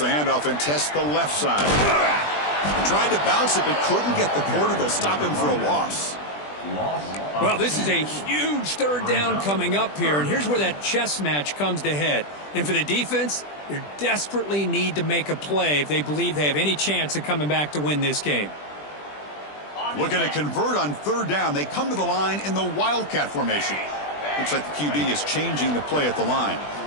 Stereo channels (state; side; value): late; right; 20 ms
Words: handoff and tests the left side. Tried to bounce it, but couldn't get the quarter to stop him for a loss. Well, this is a huge 3rd down coming up here, and here's where that chess match comes to head. And for the defense, they desperately need to make a play if they believe they have any chance of coming back to win this game. Looking to convert on 3rd down. They come to the line in the Wildcat formation. Looks like the QB is changing the play at the line.